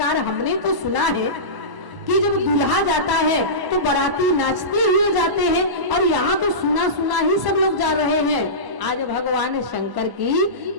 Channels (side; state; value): left; late; 1.0 ms